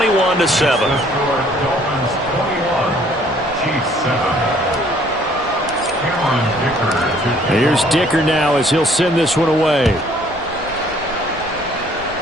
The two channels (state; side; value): normal; both; correlation 0.60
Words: Here's Dicker now as he'll send this one away.